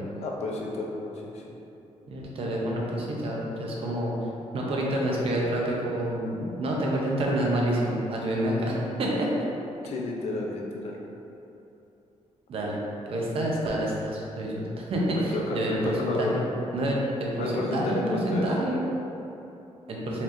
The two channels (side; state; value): both; normal; correlation 0.64